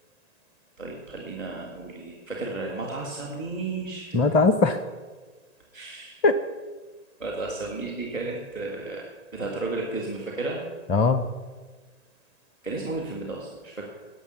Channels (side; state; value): right; late; 1.9 ms